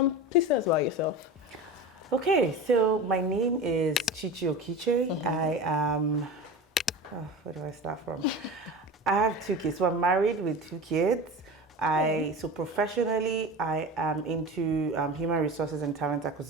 Please tell us about yourself. Okay, so my name is Chichi Okiche. I am. Where do I start from? I have 2 kids. So I'm married with 2 kids. So professionally, I am into human resources and talent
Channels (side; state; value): both; normal; correlation 0.31